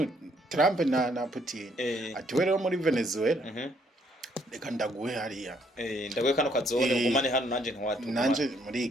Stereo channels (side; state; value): both; normal; correlation 0.68